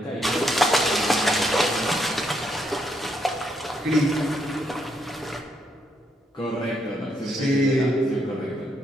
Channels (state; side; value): normal; both; correlation 0.76